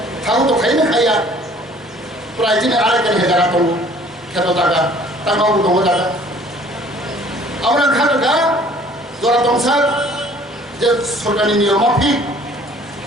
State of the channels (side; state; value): both; normal; correlation 0.54